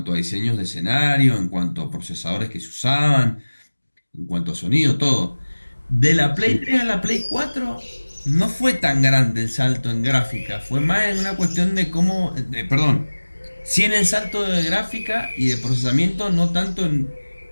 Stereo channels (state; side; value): inverted; both; correlation -1.00